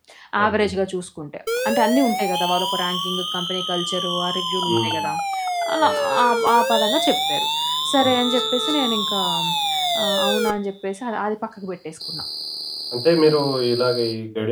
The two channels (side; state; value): both; identical; correlation 1.00